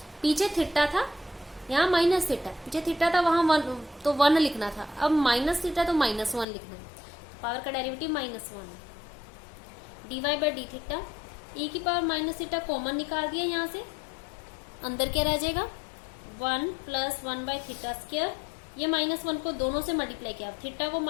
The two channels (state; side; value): drops out; right; at 6.5 s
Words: पीछे थीटा था, यहाँ माइनस थीटा, पीछे थीटा था वहां 1 तो 1 लिखना था, अब माइनस थीटा तो -1 लिखना है। पावर का डेरिवेटिव -1 है। dy by D theta, e की पावर माइनस थीटा कॉमन निकाल दिया यहाँ से, अंदर क्या रह जाएगा 1 प्लस 1 बाई थीटा स्क्वायर। ये -1 को दोनों से मल्टीप्लाई किया, थीटा को